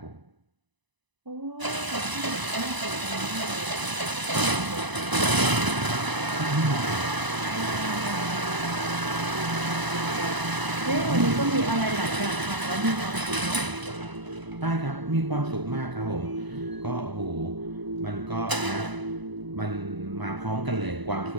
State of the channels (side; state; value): left; late; 1.0 ms